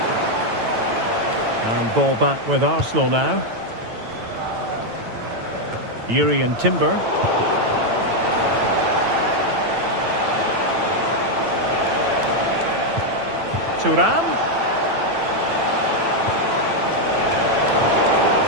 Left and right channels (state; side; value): late; left; 9.0 ms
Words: And ball back with Arsenal now. Urian Timber. Thuram.